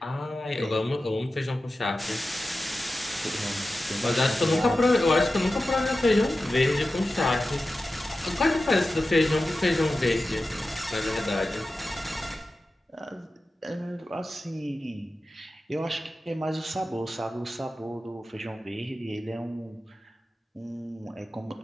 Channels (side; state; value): both; normal; correlation 0.93